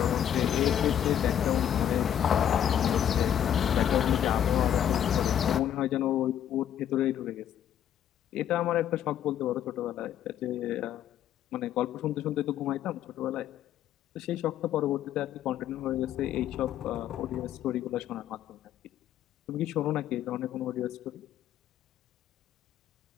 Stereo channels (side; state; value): right; quieter; 10.2 dB